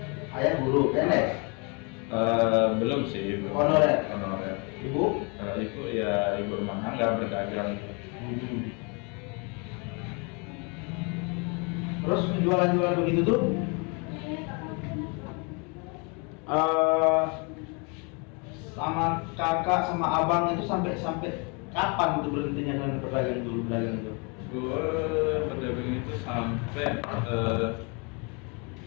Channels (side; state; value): right; quieter; 32.9 dB